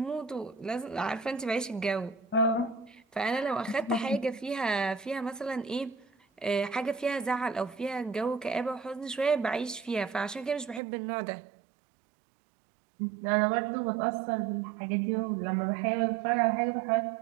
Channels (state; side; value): drops out; left; at 10.8 s